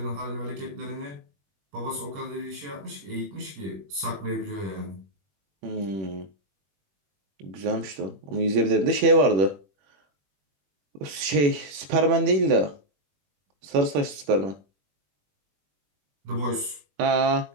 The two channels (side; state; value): left; late; 21 ms